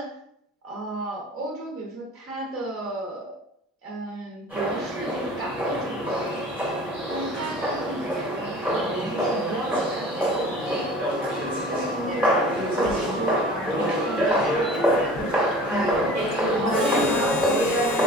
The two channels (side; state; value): both; normal; correlation 0.43